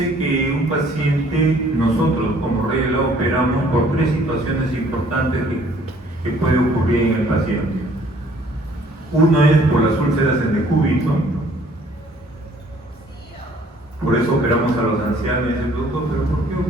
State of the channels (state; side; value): normal; both; correlation 0.58